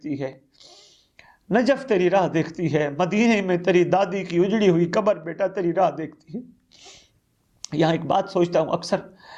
ہے، نجف تیری راہ دیکھتی ہے، مدینے میں تیری دادی کی اجڑی ہوئی قبر بیٹا تیری راہ دیکھتی ہے. یہاں ایک بات سوچتا ہوں، اکثر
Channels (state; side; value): identical; both; correlation 1.00